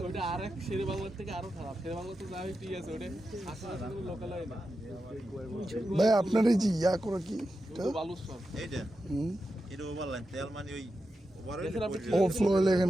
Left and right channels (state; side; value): normal; both; correlation 0.90